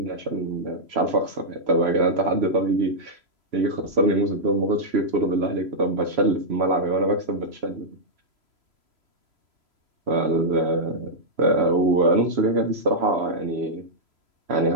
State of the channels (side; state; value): left; late; 3.0 ms